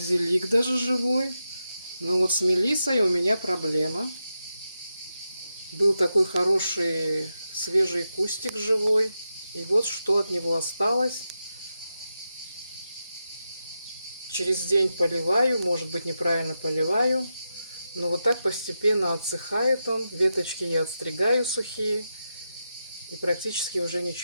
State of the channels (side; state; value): both; inverted; correlation -0.88